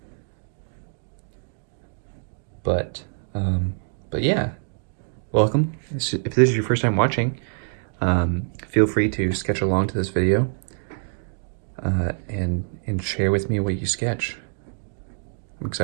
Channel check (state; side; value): silent; left; digital silence